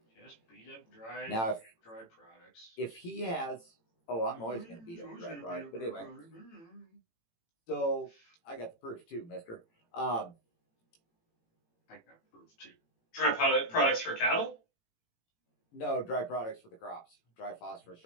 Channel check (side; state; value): right; late; 18 ms